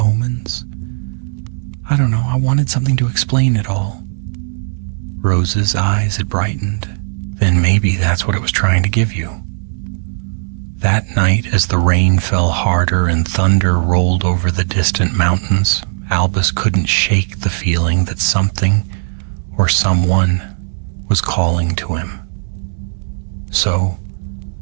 I don't know, I wanted something to explain it all." Rose's eyes had brightened. "Then maybe that's what it was trying to give you." That night, as the rain fell harder and thunder rolled over the distant mountains, Albus couldn't shake the feeling that something or someone was calling to him. So,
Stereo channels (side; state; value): left; silent; digital silence